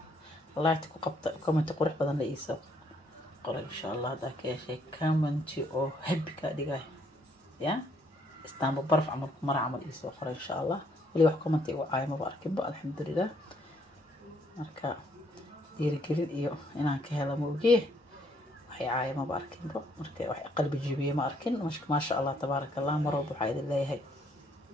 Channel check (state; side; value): normal; both; correlation 0.68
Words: ku qabta comment qurux badan la iiso qor insha Allah hada ka yeeshay comment oo happy ka dhigay ya istaanba barf amal mar amal iiso qor insha Allah wali wax comment igu caayma ba arkin ba alxamdulillah marka dhiirigelin iyo inaan ka helo mooge waxay caayma ba arkin ba marka wax qalbi jibiye ma arkin ma sha Allah tabaaraka Allah marwab waxa idin leeyahay